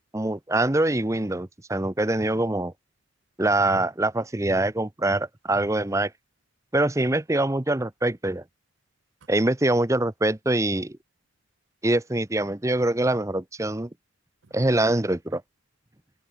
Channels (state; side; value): normal; both; correlation 0.68